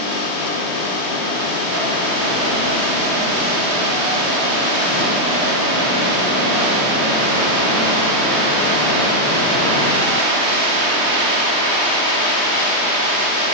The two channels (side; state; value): right; late; 3.2 ms